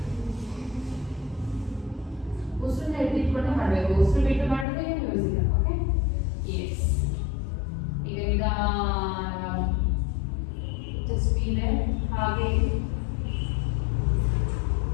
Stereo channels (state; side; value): drops out; right; at 4.7 s